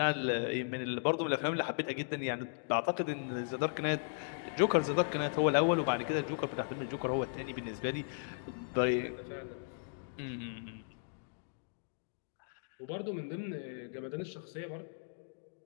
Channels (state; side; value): silent; right; digital silence